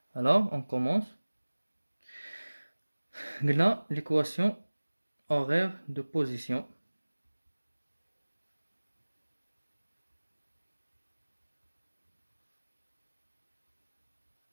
Alors, on commence. Là, l'équation horaire de position.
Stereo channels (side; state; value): both; inverted; correlation -1.00